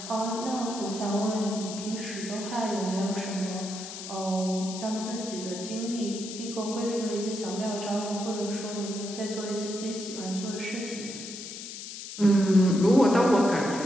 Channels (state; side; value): noise; left; hiss, 10 dB below the sound